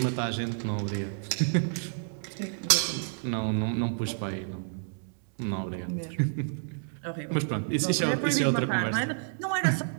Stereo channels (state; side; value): silent; left; digital silence